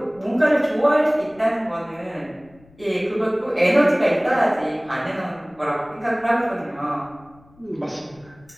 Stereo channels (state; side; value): noise; left; rumble, 28 dB below the sound